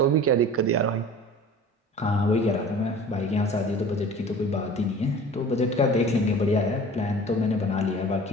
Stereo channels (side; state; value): both; normal; correlation 0.42